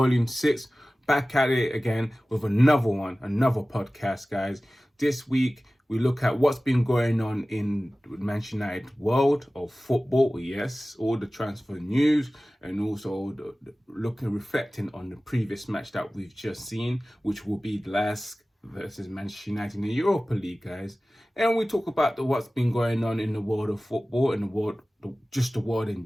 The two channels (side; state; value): both; normal; correlation 0.97